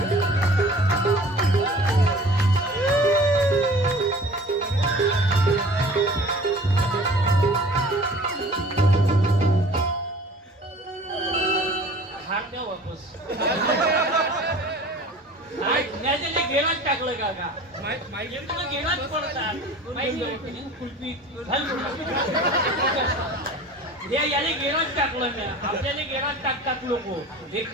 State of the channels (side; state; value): both; normal; correlation 0.44